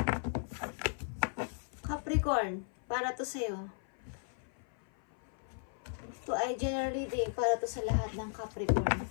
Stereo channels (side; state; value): right; silent; 54 dB below the other